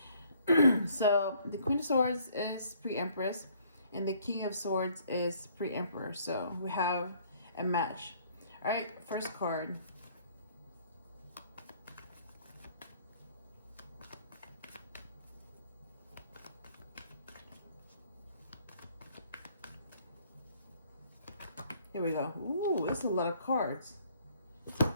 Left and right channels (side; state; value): both; inverted; correlation -0.61